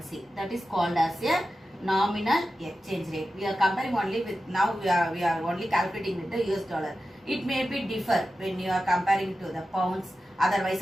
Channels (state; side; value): normal; both; correlation 0.92